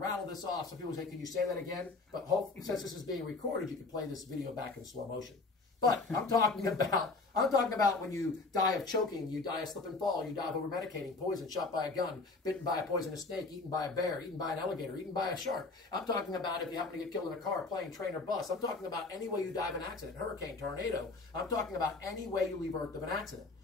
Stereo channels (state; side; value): quieter; right; 3.7 dB